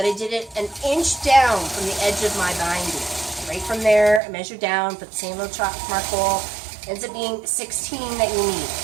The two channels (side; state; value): left; drops out; at 4.2 s